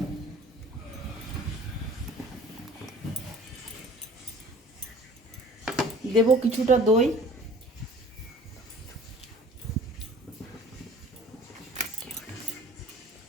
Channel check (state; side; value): normal; both; correlation 0.49